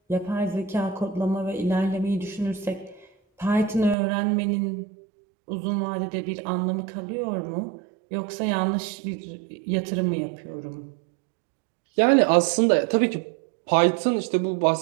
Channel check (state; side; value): drops out; left; at 4.0 s